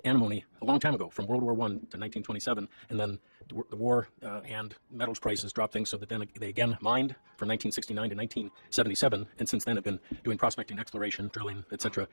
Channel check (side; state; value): both; inverted; correlation -1.00